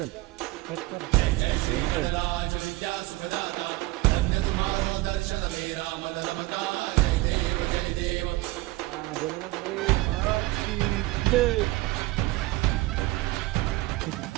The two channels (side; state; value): left; quieter; 19.6 dB